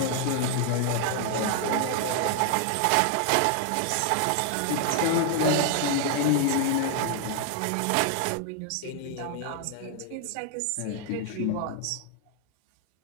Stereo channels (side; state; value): both; different; correlation 0.00